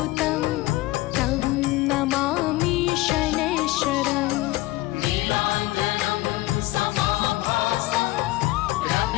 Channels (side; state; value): right; quieter; 18.7 dB